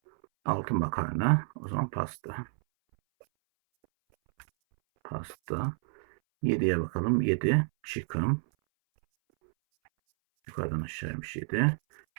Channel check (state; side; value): silent; left; 58 dB below the other